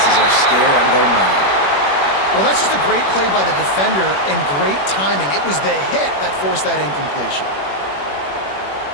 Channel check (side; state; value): right; late; 21 ms